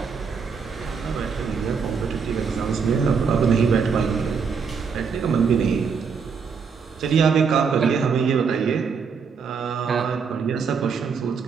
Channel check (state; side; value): quieter; left; 5.9 dB